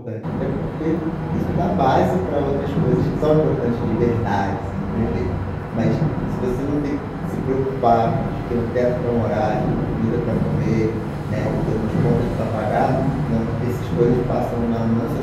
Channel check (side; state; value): both; identical; correlation 1.00